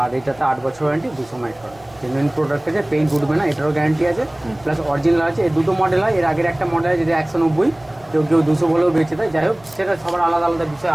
এটাতে 8 বছর ওয়ারেন্টি, 200 মাইক্রন, জেনুইন প্রোডাক্ট আছে, পেইন্ট উঠবে না, এটারও গ্যারান্টি আছে, প্লাস অরিজিনাল আছে। এই দুটো মডেল হয়, এর আগের একটা মডেল আছে যেটা 190, কেউ 200 বলেও বেঁচে দেয়। যাই হোক, সেটা সবার আলাদা আলাদা বিষয়,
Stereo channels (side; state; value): right; noise; rumble, 26 dB below the sound